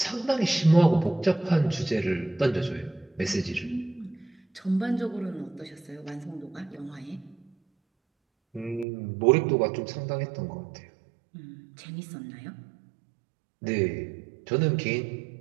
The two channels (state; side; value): drops out; left; at 8.8 s